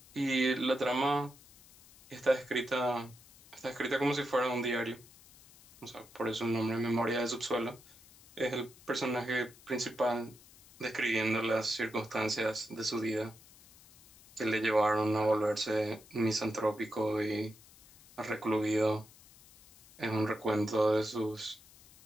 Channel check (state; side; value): noise; left; hiss, 24 dB below the sound